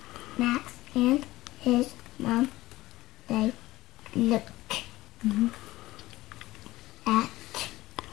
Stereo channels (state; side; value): quieter; right; 17.7 dB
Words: Max and his mom, they look at